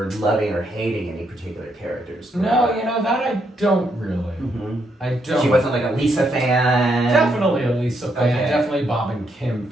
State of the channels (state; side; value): normal; both; correlation 0.77